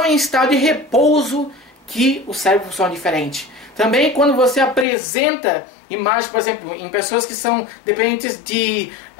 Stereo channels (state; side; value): drops out; right; at 4.9 s